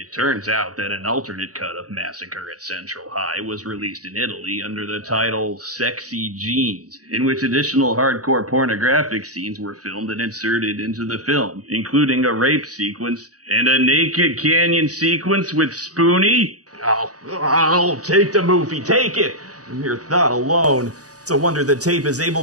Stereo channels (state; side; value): late; left; 0.67 ms